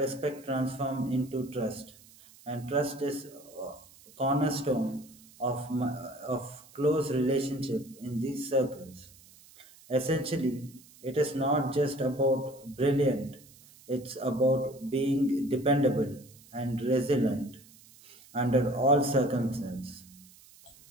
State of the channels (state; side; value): noise; right; hiss, 24 dB below the sound